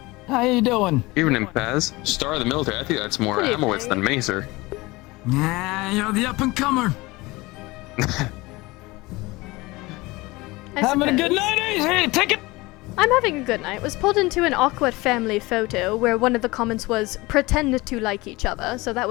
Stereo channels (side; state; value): right; quieter; 22.0 dB